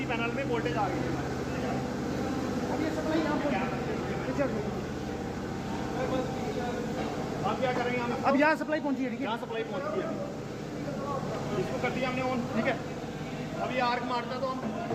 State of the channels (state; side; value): identical; both; correlation 1.00